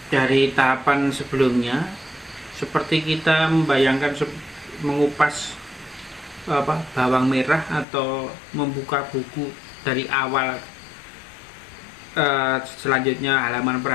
dari tahapan sebelumnya seperti kita membayangkan mengupas bawang merah atau membuka buku dari awal, selanjutnya halaman per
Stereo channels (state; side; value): drops out; right; at 7.9 s